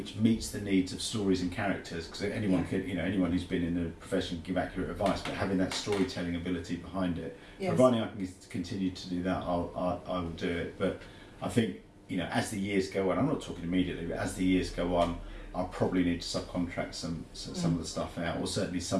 meets the needs of stories and characters, because anyone who's been in the profession can give accurate advice, but having that storytelling ability behind it, providing I can continue to do that, I will do it. But I think as the years go on, I'm not talking immediately, but as the years go on, I'll probably need to subcontract some of the stuff out, or certainly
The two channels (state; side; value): identical; both; correlation 1.00